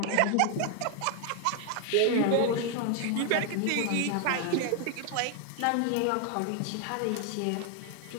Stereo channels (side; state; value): both; different; correlation 0.00